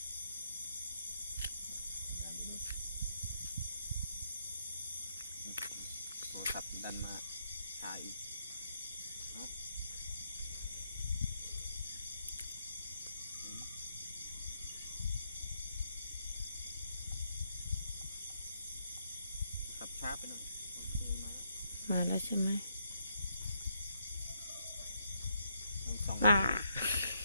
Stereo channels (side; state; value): both; inverted; correlation -0.75